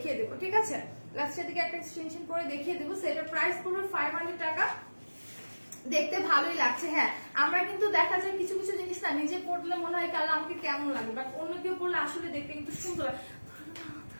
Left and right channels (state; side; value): inverted; both; correlation -1.00